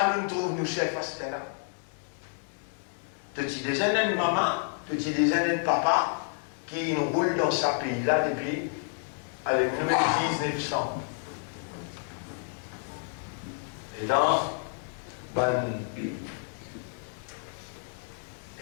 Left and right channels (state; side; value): silent; right; 57 dB below the other